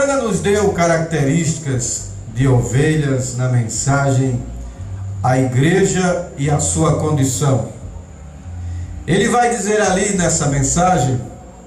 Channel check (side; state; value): both; identical; correlation 1.00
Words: nos deu características de ovelhas na mensagem A Igreja e a Sua Condição. Ele vai dizer ali nessa mensagem